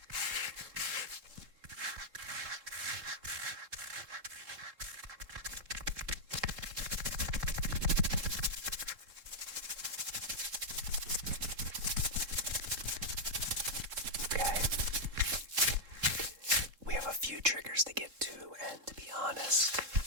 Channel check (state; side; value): late; left; 3.7 ms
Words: Triggers to get to, and to be honest,